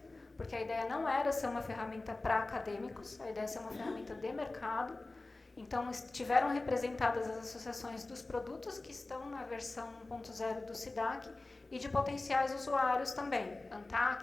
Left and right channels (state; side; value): quieter; right; 3.1 dB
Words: porque a ideia não era ser uma ferramenta para acadêmicos, a ideia é ser uma ferramenta de mercado. Então, estiveram representadas as associações dos produtos que estão na versão 1.0 do SIDAC e de potenciais usuários também,